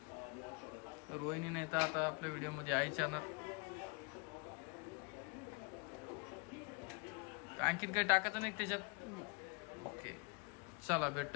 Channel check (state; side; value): quieter; right; 32.4 dB